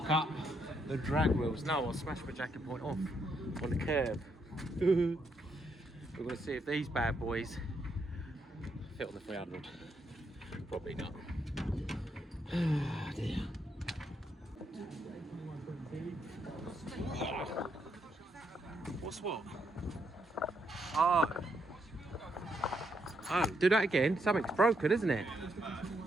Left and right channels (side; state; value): both; normal; correlation 0.78